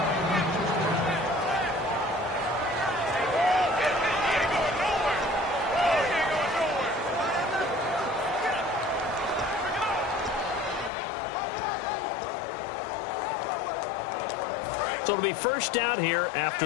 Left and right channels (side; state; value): right; drops out; at 10.9 s